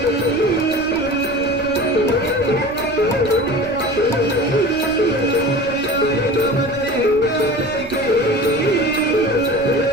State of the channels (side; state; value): right; noise; rumble, 19 dB below the sound